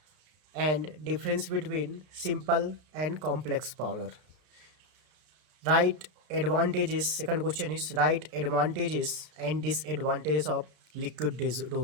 and difference between simple and complex powder. Right advantages, second question is right advantages and disadvantages of liquid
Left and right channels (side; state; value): left; late; 33 ms